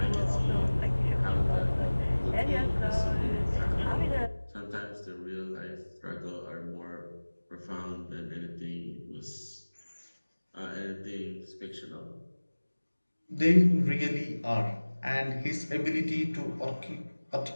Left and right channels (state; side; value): inverted; both; correlation -1.00